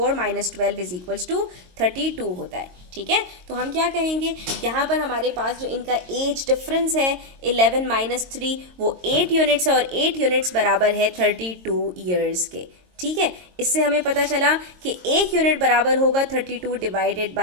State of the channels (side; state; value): left; late; 22 ms